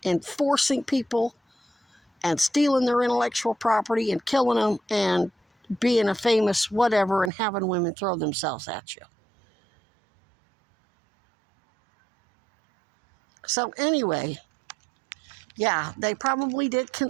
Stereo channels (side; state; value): left; drops out; at 7.3 s